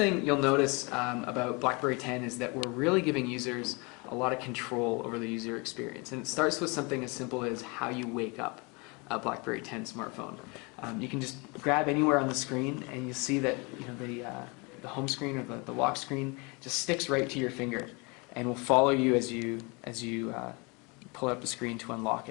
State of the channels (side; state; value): right; quieter; 29.3 dB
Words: you'll notice about BlackBerry 10 is that we're really giving users a lot of control over the user experience, and it starts with something as simple as how you wake up a BlackBerry 10 smartphone. You can just grab anywhere on the screen, and you'll see that the home screen or the lock screen just sticks right to your finger, and will follow you as you pull up the screen to unlock